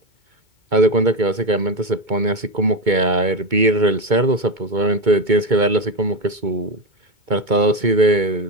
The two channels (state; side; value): late; left; 2.2 ms